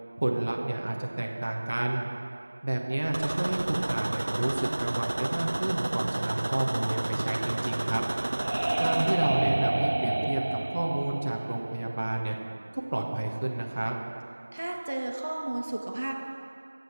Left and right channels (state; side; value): inverted; both; correlation -1.00